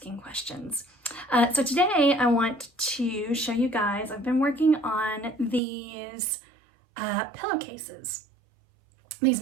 questions. So today I want to show you guys, I've been working on these pillowcases. These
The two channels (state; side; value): drops out; left; at 5.6 s